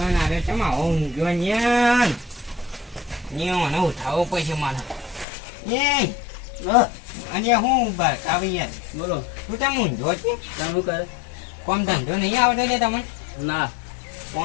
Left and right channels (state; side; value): drops out; right; at 5.2 s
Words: આજે છે આવો ઊંઘ્યો ન્યાન મને ઉઠાવવો પડશે મારે એ અને હું આવી યાર બોલો તું તેમ ઊંધો છે શું કરે કોમ ધંધો નહીં આવતો ને તમને ના